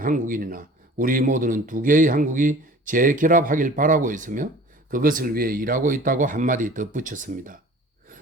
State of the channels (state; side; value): normal; both; correlation 0.45